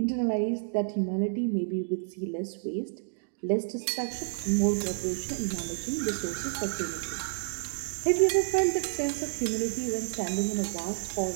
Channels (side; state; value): left; silent; digital silence